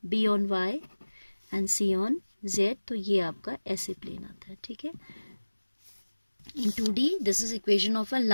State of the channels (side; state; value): both; inverted; correlation -1.00